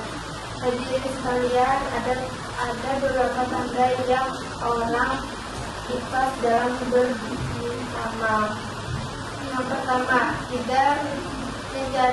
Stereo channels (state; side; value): identical; both; correlation 1.00